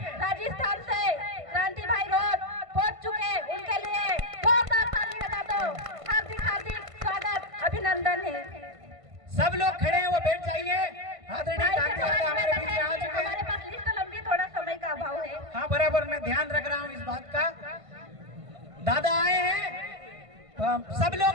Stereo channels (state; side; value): late; left; 1.5 ms